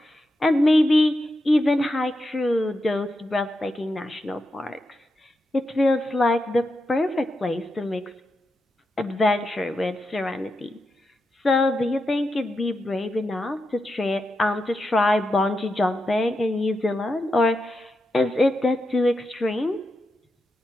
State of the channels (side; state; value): both; normal; correlation 0.87